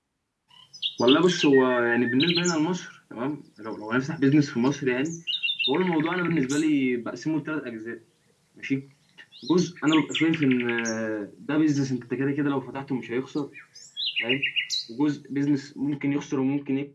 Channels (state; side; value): identical; both; correlation 1.00